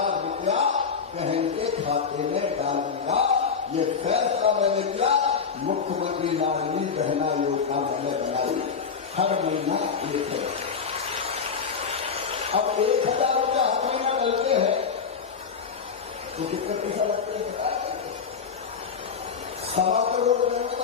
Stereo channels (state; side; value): quieter; right; 6.0 dB